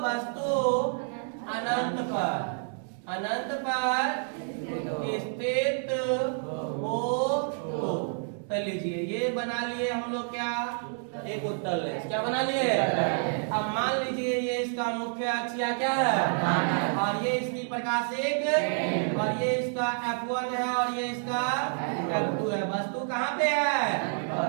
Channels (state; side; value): silent; left; 59 dB below the other